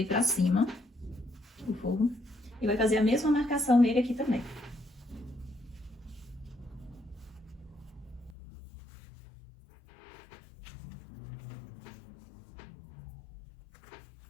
pra cima, o forro. E vai fazer a mesma marcação nele aqui também.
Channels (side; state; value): right; drops out; at 8.3 s